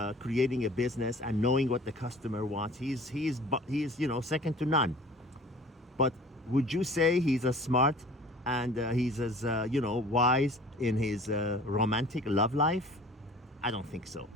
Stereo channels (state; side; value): normal; both; correlation 0.46